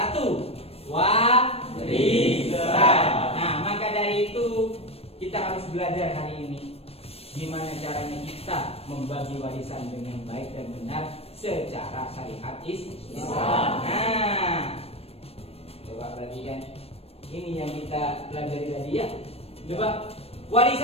warisan. Nah, maka dari itu kita harus belajar hari ini gimana caranya kita membagi warisan dengan baik dan benar secara syariat Islam. Nah, coba perhatikan. Ini yang kita pelajari tadi ya. Coba,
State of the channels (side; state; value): right; late; 0.29 ms